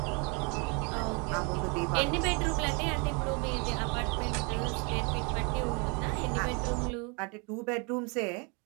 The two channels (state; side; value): quieter; left; 32.9 dB